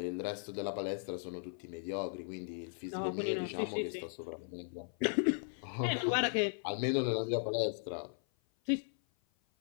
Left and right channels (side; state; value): right; silent; 53 dB below the other